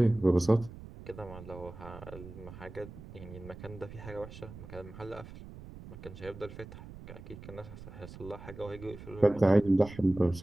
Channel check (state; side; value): noise; right; rumble, 15 dB below the sound